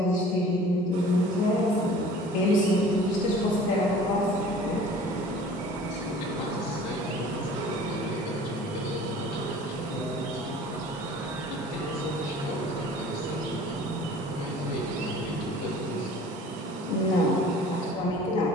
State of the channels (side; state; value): both; normal; correlation 0.47